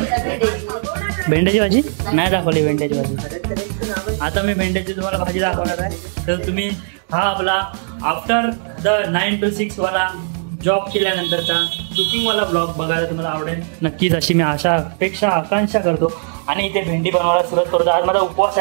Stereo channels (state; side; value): silent; left; digital silence